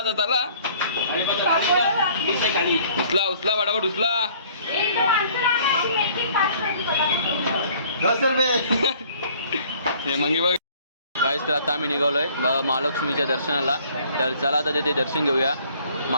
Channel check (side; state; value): both; inverted; correlation -0.56